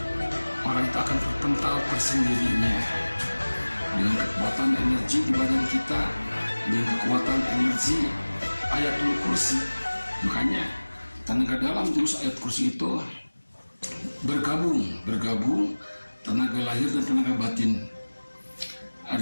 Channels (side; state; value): both; inverted; correlation -1.00